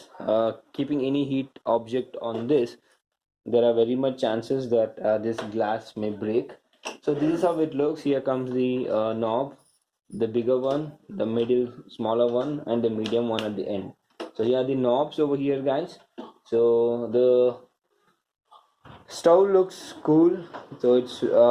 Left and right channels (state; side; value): identical; both; correlation 1.00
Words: keeping any heat object on this, there are very much chances that this glass may break. So this is how it looks. Here comes the knob, the bigger one, the middle smaller one, and the medium one at the end. So here are the knobs over here, guys. So the stove looks cool, so it's